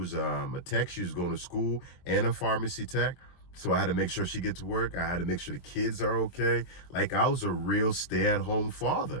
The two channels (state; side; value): late; right; 23 ms